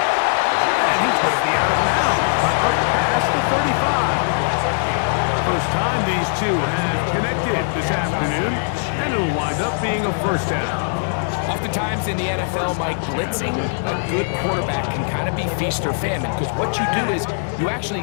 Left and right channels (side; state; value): right; silent; digital silence